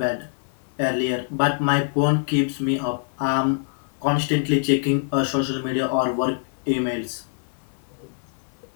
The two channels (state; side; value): silent; right; 62 dB below the other